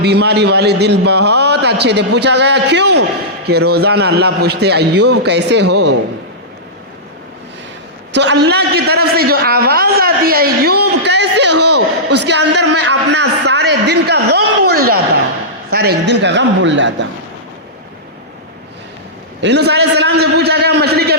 بیماری والے دن بہت اچھے تھے۔ پوچھا گیا کیوں؟ کہ روزانہ اللہ پوچھتے ایوب کیسے ہو؟ تو اللہ کی طرف سے جو آواز آتی ہے ایوب کیسے ہو، اس کے اندر میں اپنا سارے دن کا غم بھول جاتا ہوں، یونس علیہ السلام سے پوچھا گیا مچھلی کے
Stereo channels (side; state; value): both; normal; correlation -0.14